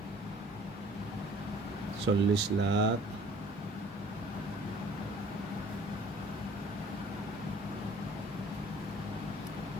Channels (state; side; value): normal; both; correlation 0.52